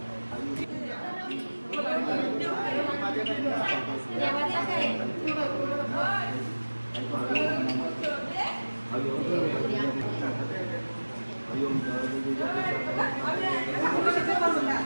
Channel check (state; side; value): inverted; both; correlation -1.00